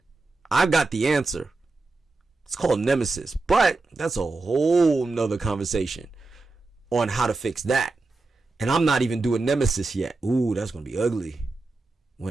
I've got the answer. It's called Nemesis, but that's a whole nother conversation on how to fix that. And I'm not even doing Nemesis yet. Ooh, that's going to be ugly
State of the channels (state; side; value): quieter; left; 3.5 dB